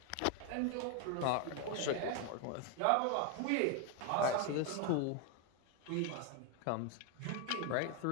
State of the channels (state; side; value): different; both; correlation 0.01